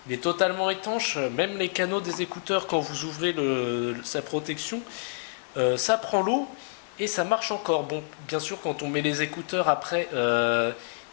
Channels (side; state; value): right; silent; digital silence